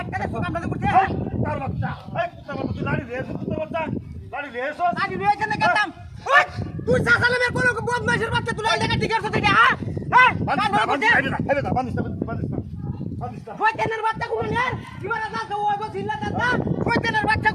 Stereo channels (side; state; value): both; identical; correlation 1.00